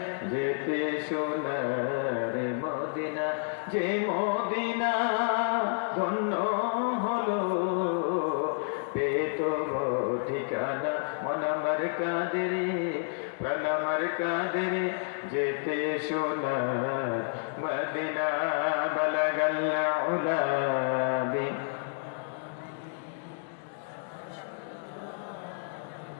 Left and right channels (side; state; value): right; silent; digital silence